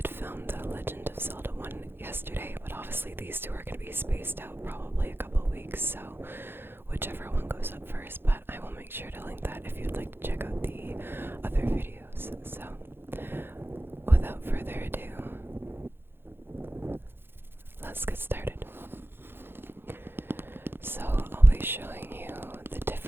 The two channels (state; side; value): late; left; 0.10 ms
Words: film the Legend of Zelda one yesterday, but obviously these two are going to be spaced out probably a couple weeks, so whichever one goes up first, but I will make sure to link that if you'd like to check out the other videos. So, without further ado, let's get started. So, I'll be showing you the